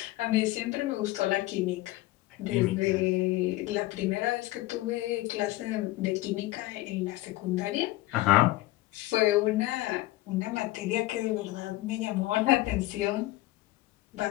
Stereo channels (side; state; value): right; quieter; 18.2 dB